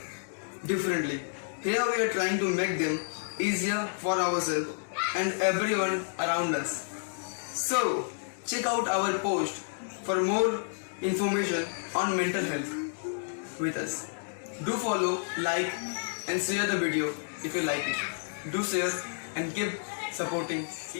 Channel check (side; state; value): right; silent; digital silence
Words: differently. Here we are trying to make them easier for ourselves and everyone around us. So, check out our post for more information on mental health with us. Do follow, like and share the video if you like it. Do share and keep supporting